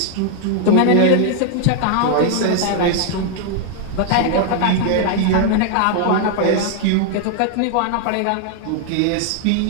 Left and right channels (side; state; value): both; different; correlation 0.00